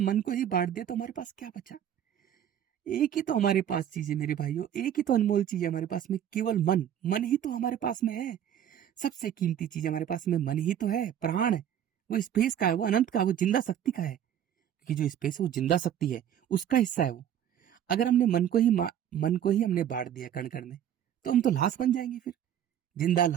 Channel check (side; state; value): left; quieter; 10.1 dB